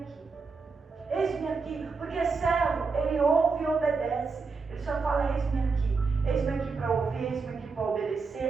aqui. Eis-me aqui, porque servo, ele ouve e obedece. Ele só fala: eis-me aqui. Eis-me aqui para ouvir, eis-me aqui para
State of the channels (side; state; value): left; quieter; 4.6 dB